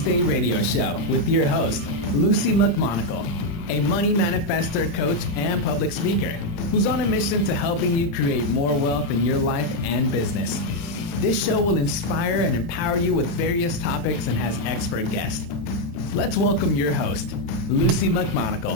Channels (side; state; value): both; normal; correlation 0.02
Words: radio show with your host, Lucy McMonagle, a money manifestor, coach, and public speaker who's on a mission to helping you create more wealth in your life and business. This show will inspire and empower you with various topics and has expert guests. Let's welcome your host, Lucy